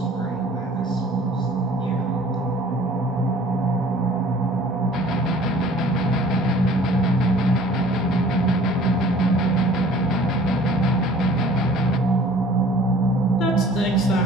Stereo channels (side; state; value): both; normal; correlation 0.50